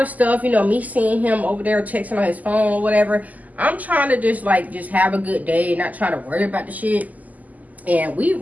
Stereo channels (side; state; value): left; late; 0.078 ms